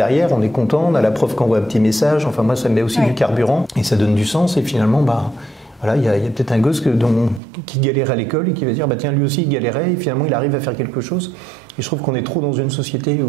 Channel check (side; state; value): left; drops out; at 7.4 s